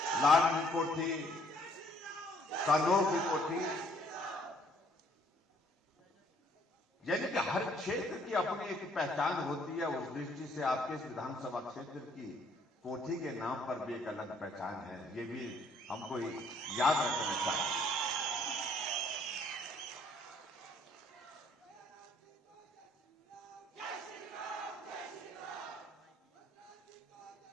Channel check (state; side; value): normal; both; correlation 0.63